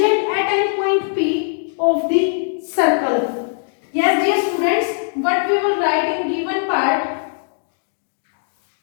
at any point P of the circle. Yes, dear students, what we will write in given part?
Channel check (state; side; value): silent; right; digital silence